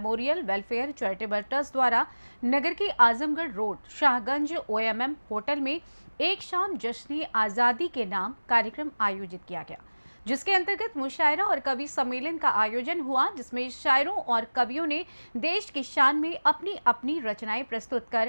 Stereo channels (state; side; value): inverted; both; correlation -1.00